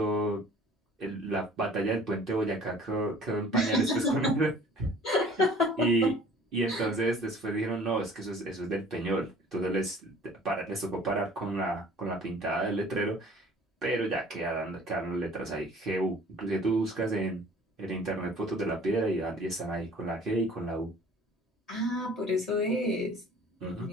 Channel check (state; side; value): normal; both; correlation 0.50